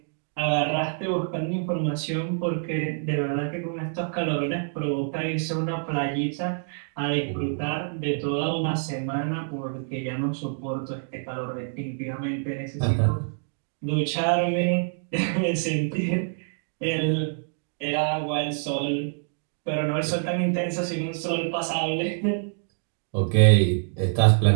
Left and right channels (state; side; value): silent; left; digital silence